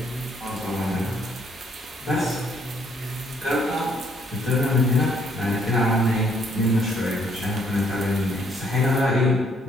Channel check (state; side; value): normal; both; correlation 0.67